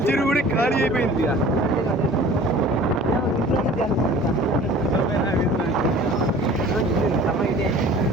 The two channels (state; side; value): normal; both; correlation 0.46